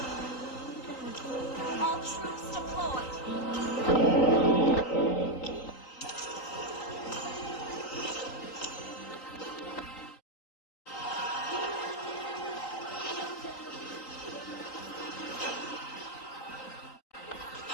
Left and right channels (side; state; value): right; late; 3.9 ms